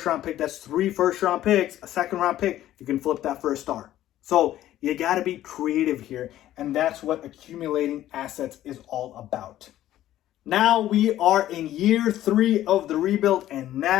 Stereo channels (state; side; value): quieter; right; 13.3 dB